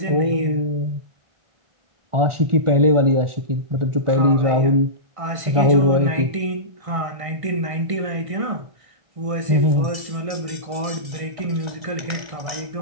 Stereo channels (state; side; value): late; left; 1.6 ms